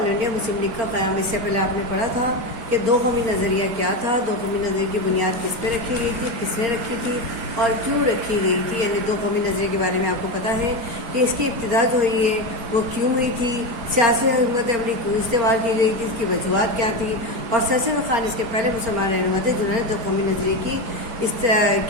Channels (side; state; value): left; late; 4.3 ms